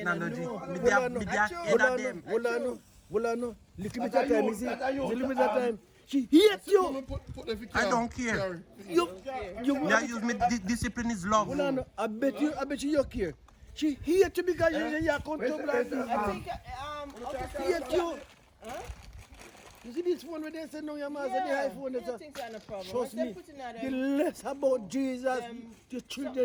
know. Me Hold on, there no. head of them. Hold on. Little bit of time, you see? Little bit of time. She hates you. I don't care. You Me I use me discipline is love. Hold on. I bet you care. She hates you because you are comfortable like this. I think She hates you. You see this one where they say no, your man said the iPhone. I think that's no problem. Trust Once they me. put in that, The less about Jesus, the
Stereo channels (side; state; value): both; identical; correlation 1.00